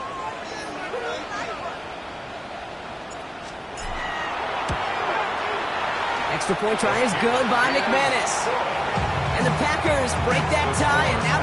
Extra point try is good by McManus. And the Packers break that tie and now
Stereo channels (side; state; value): both; identical; correlation 1.00